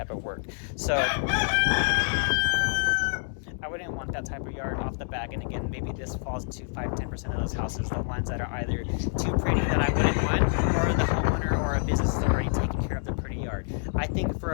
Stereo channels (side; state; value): right; silent; digital silence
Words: of work. So I wouldn't want that type of yard off the back. And again, maybe this falls into 5-10% of those houses, the ones that are either too pretty that I wouldn't want, or the homeowner or a business is already taking care of the pretty yard. I think